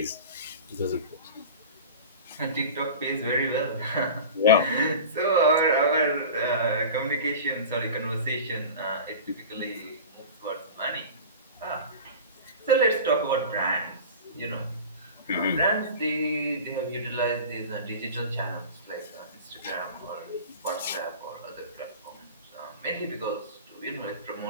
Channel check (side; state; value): both; inverted; correlation -0.34